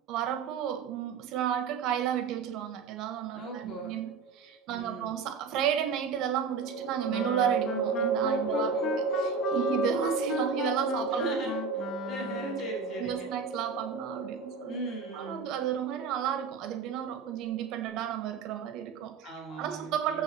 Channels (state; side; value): quieter; left; 5.5 dB